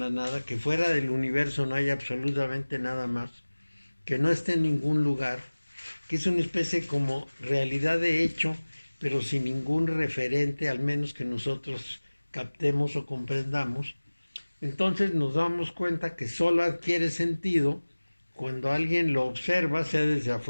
nada, que fuera del universo no hay absolutamente nada más, que no esté en ningún lugar, que es una especie como realidad de hecho, pero sin ningún referente, al menos que nosotros captemos o comprendamos. Entonces nos damos cuenta que solo adquiere sentido cuando alguien lo observa, sea desde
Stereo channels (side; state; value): both; inverted; correlation -1.00